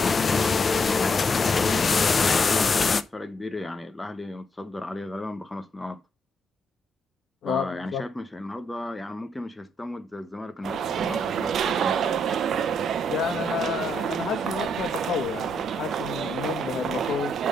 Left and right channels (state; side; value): normal; both; correlation 0.76